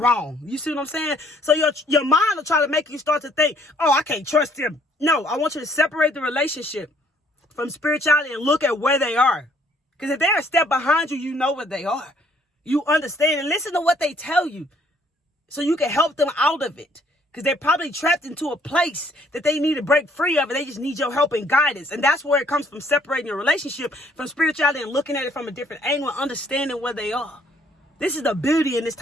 You see what I'm saying? So your mind will try to make you start to think, oh, I can't trust them. No, I want you to separate the relationship from spirituality and look at where they are. Because if they're a step behind you, you know where they are. You understand and listen to what they tell you so you can help them out of it. Because they're probably trapped into a place that they need to break free of, and they just need your help and guidance. And that's where it comes from, separating your relationship from spirituality and looking at it from a different angle and understanding where they are. This is the beauty in this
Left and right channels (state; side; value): normal; both; correlation 0.63